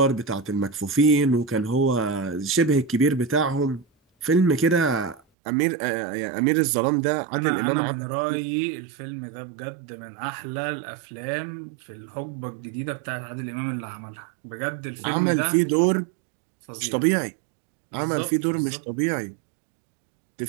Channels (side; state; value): left; drops out; at 5.2 s